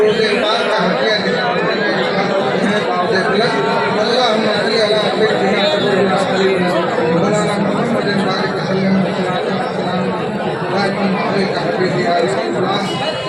पाक का हदिया देने बावजूद प्लस अल्लाहुम्मा सल्ली अला सय्यिदिना मौलाना मुहम्मद बारिक वसल्लम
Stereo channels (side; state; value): both; identical; correlation 1.00